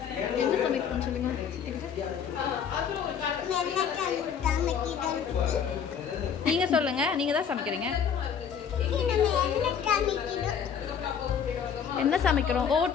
என்ன சமைக்கணும்னு சொல்லுங்க. நீங்க சொல்லுங்க, நீங்க தான் சமைக்கிறீங்க. என்ன சமைக்கிறோம்?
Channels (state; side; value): quieter; right; 7.5 dB